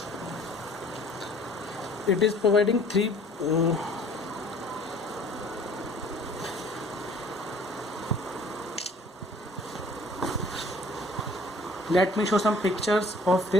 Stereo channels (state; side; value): normal; both; correlation 0.54